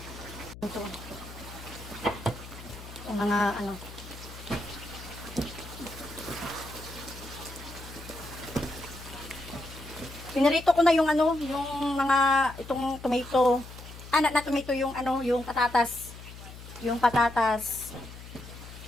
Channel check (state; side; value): noise; left; hum, 14 dB below the sound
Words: Ito. Yung mga ano. Pinarito ko na yung ano, yung mga itong tomato. Na tomato yung ano, yung patatas. Yung patatas.